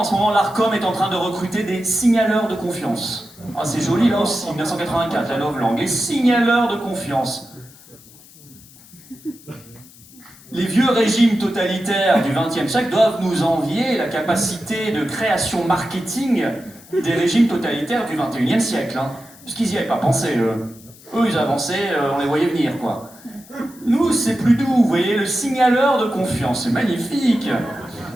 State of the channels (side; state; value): left; noise; hiss, 23 dB below the sound